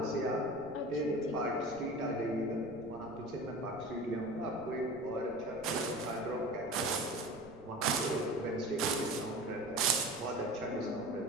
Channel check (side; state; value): right; noise; rumble, 21 dB below the sound